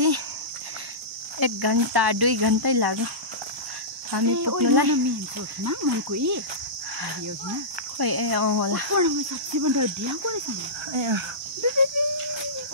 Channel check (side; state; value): left; late; 1.0 ms